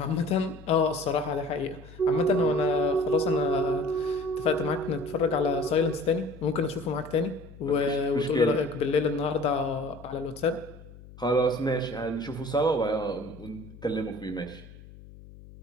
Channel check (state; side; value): noise; left; hum, 19 dB below the sound